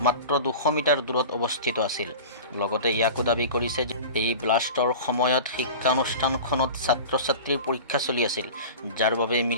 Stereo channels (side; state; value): both; inverted; correlation -0.35